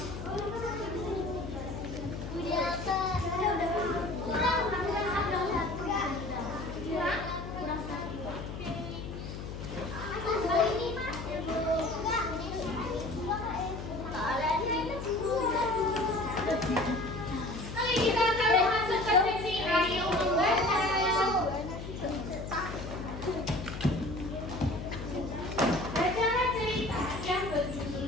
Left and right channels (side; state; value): left; noise; hum, 8 dB below the sound